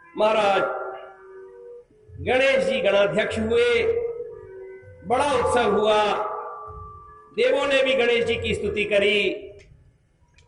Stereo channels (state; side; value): identical; both; correlation 1.00